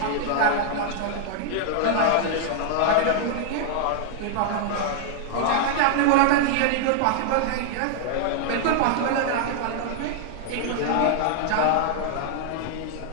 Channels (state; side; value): different; both; correlation -0.01